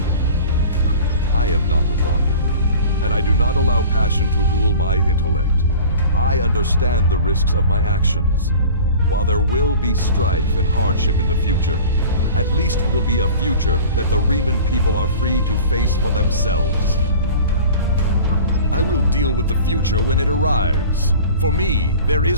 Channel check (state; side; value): inverted; both; correlation -0.41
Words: I am not a Romulan, and I do not allow passion to rule my intellect. I understand the risks of my actions. While there will be strife and hardship in the future, at least it will be a future that the Riemann people are free to face for themselves. I will deal with the future when it arrives. For me, there